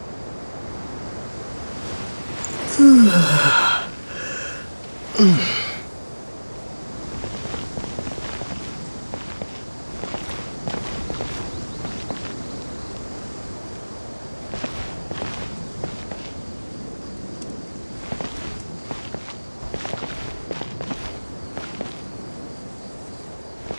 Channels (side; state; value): both; inverted; correlation -1.00